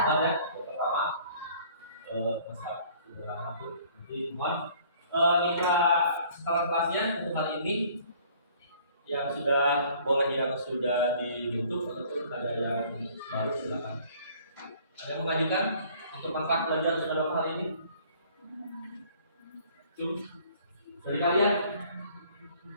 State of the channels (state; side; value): inverted; both; correlation -0.56